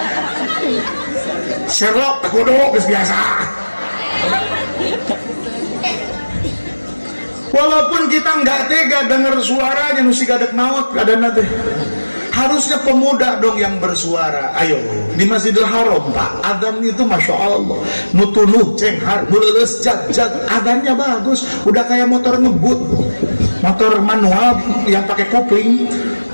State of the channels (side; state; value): both; inverted; correlation -1.00